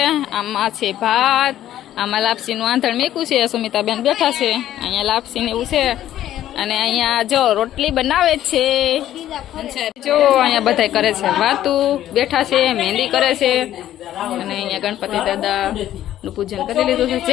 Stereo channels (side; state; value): right; quieter; 12.4 dB